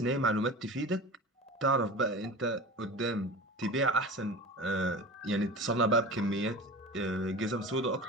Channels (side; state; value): both; normal; correlation 0.33